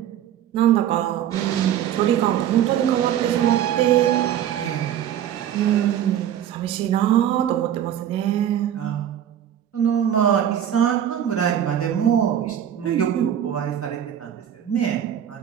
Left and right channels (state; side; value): quieter; left; 10.3 dB